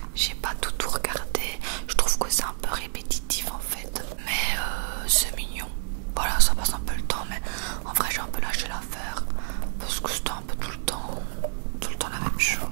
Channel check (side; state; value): left; silent; digital silence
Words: J'ai pas tout regardé, je trouve que c'est un peu répétitif en fait, mais c'est mignon. Voilà, ça passe un peu le temps, mais en vrai j'ai un peu lâché l'affaire parce que c'était un peu tout le temps la même chose.